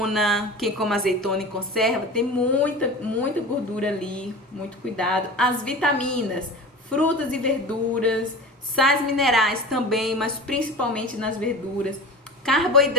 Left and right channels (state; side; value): normal; both; correlation 0.34